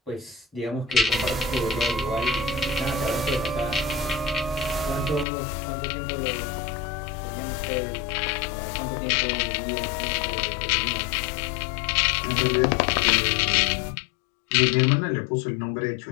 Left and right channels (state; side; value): drops out; right; at 5.2 s